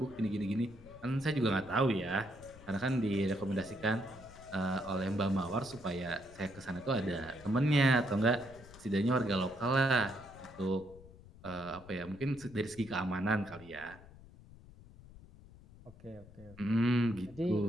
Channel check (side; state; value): left; noise; rumble, 20 dB below the sound